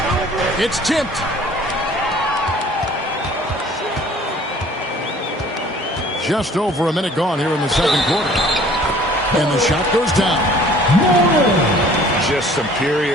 It's tipped. Just over a minute gone here in the second quarter. And the shot goes down. Just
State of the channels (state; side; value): normal; both; correlation 0.52